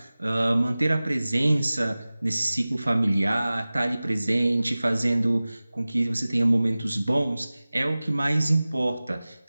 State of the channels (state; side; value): inverted; both; correlation -0.98